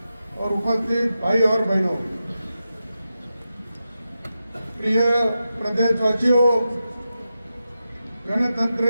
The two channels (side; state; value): both; inverted; correlation -0.90